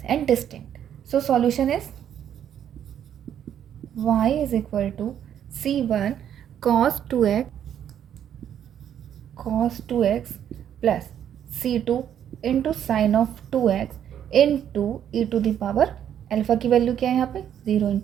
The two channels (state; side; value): quieter; left; 9.7 dB